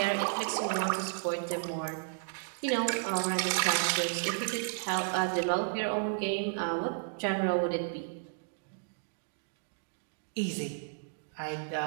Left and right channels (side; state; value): left; silent; digital silence